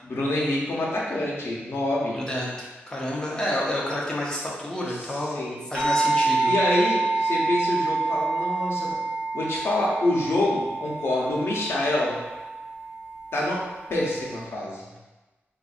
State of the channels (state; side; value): normal; both; correlation 0.83